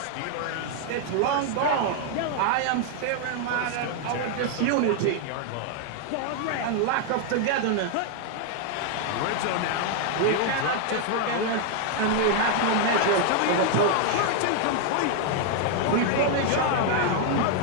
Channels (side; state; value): both; different; correlation 0.00